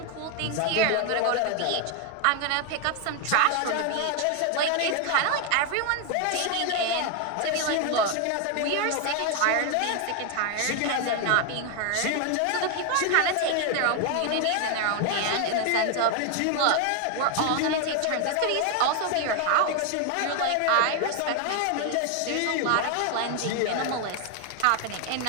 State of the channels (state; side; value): different; both; correlation 0.00